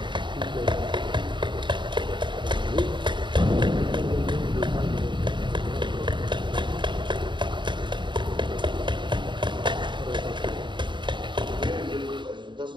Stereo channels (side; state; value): left; late; 0.23 ms